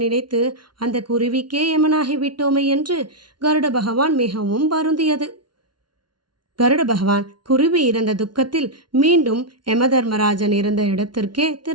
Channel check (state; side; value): late; left; 0.71 ms